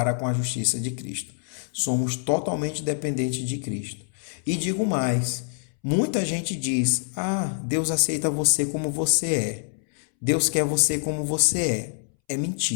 com a justiça de Cristo. Somos totalmente dependentes de Cristo. E digo mais, muita gente diz, Deus aceita você como você é. Deus quer você como você é. É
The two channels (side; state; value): right; silent; 61 dB below the other